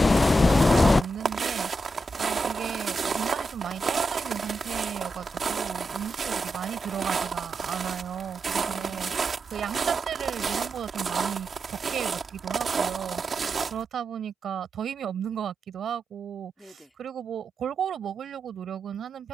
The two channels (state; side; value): normal; both; correlation 0.87